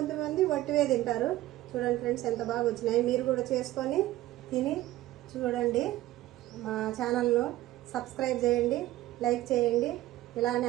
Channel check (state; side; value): quieter; left; 15.6 dB